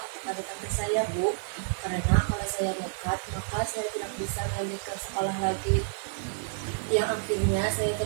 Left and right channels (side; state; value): left; silent; 58 dB below the other